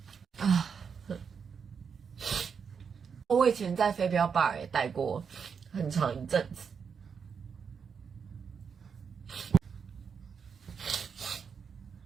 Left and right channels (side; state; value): left; quieter; 6.4 dB